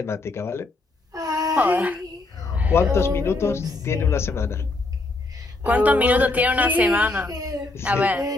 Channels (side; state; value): right; quieter; 3.2 dB